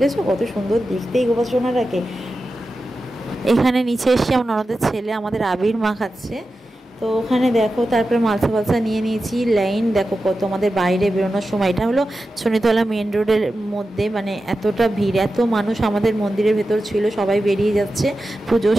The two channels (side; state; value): both; normal; correlation 0.92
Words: কত সুন্দর দেখতেই গোপাল সোনারাকে। এখানে নিচে এসে আমার ননদের ছেলে আমাদের আবির মাখাচ্ছে। তো ওখানে দেখো তারপরে মালসা নিয়ে নিয়েছি। লাইন দেখো কত, আমাদের বাইরে বেরোনোর সময়, এটা হলো শনিতলা মেন রোডের মধ্যে, মানে এতটা ভিড়, এত মানুষ আমাদের মন্দিরের ভেতর ছিল, সবাই বেরিয়ে যাচ্ছে, পুজো